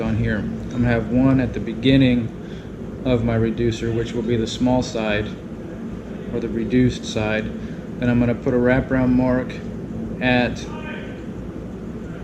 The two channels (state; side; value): identical; both; correlation 1.00